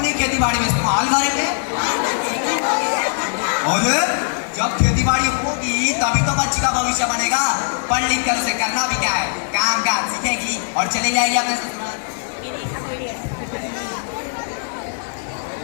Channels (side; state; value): right; silent; 66 dB below the other